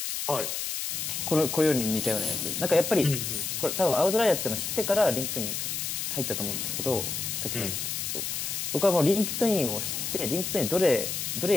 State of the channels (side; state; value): left; noise; hiss, 3 dB below the sound